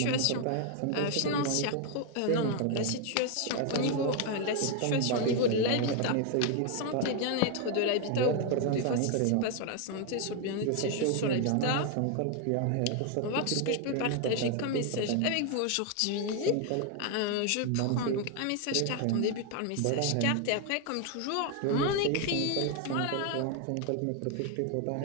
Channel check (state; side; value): different; both; correlation 0.01